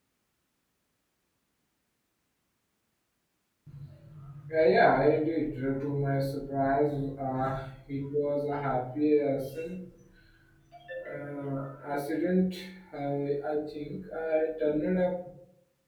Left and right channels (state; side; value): identical; both; correlation 1.00